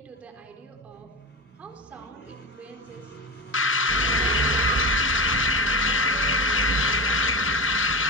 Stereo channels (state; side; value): normal; both; correlation 0.23